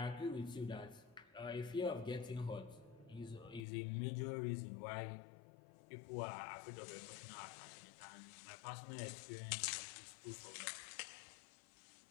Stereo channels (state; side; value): drops out; right; at 3.7 s